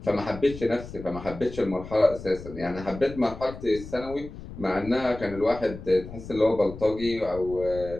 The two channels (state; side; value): noise; left; rumble, 13 dB below the sound